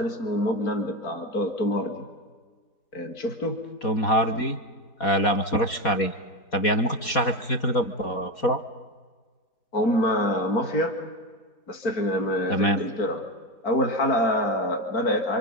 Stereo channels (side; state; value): right; late; 4.2 ms